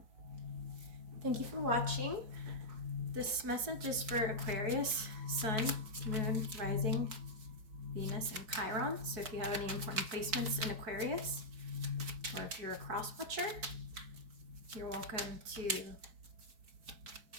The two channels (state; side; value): late; left; 4.6 ms